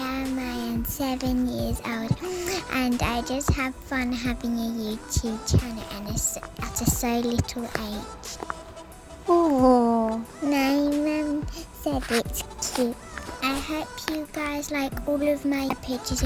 am 7 years old, and I just have fun having a YouTube channel and at a so little age. Oh, my mum said it's cute. I hope you guys like all of my pictures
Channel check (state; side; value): identical; both; correlation 1.00